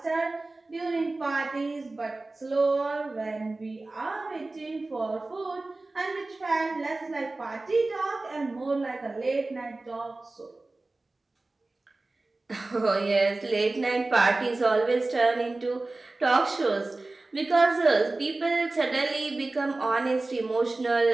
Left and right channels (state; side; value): quieter; left; 3.1 dB